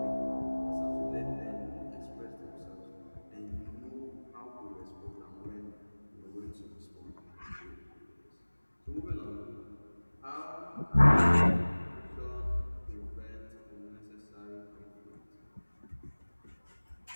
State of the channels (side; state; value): both; inverted; correlation -1.00